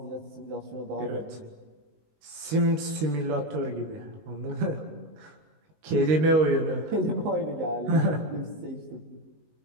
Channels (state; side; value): late; left; 19 ms